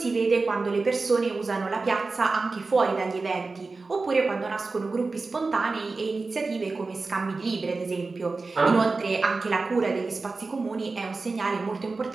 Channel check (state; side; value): quieter; left; 3.8 dB